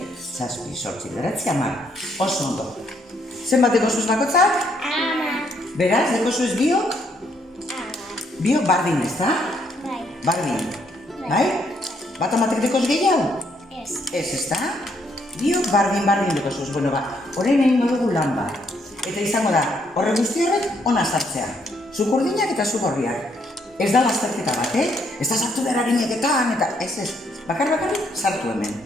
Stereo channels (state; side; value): normal; both; correlation 0.72